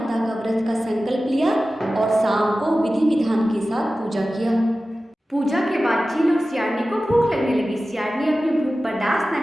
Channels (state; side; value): normal; both; correlation 0.95